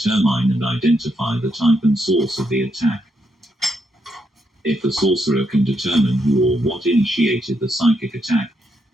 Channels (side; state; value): both; normal; correlation 0.79